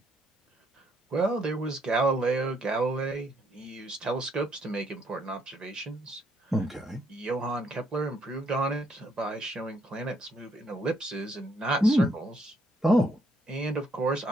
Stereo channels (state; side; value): normal; both; correlation 0.72